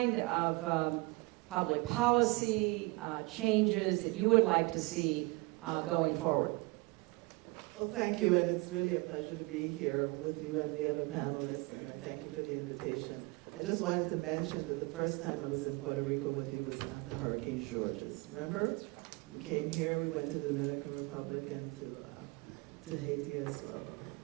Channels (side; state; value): left; quieter; 25.5 dB